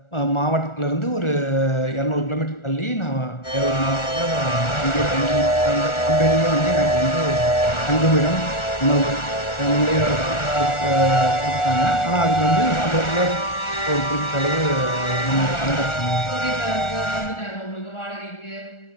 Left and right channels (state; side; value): late; right; 1.4 ms